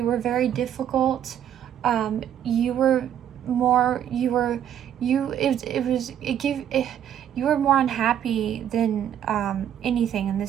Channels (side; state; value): left; quieter; 10.0 dB